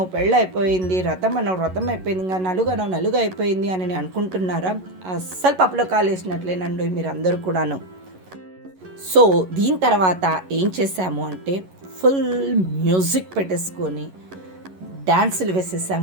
అయిపోయింది, వ్రతం అయిపోయింది, ఇంకా నలుగు అయిపోయింది అని అనుకుంటున్నారా? అస్సలు పప్పులో కాలేసినట్లేనండి మీరు అందరూ కూడాను. సో దీని తర్వాత ఏం చేసాము అంటే ఫుల్ మ్యూజిక్ పెట్టేసుకొని డాన్సులు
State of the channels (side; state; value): left; late; 11 ms